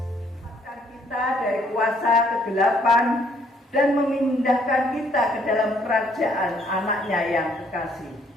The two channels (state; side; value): normal; both; correlation 0.66